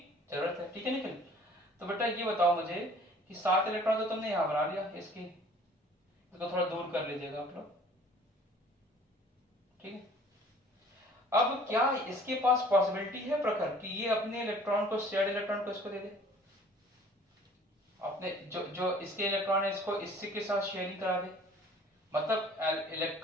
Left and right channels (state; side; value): normal; both; correlation 0.52